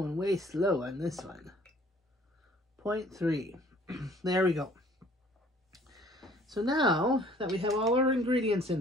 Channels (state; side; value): normal; both; correlation 0.55